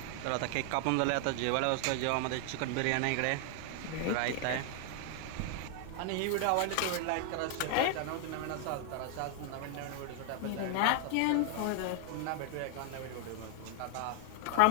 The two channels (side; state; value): both; different; correlation 0.00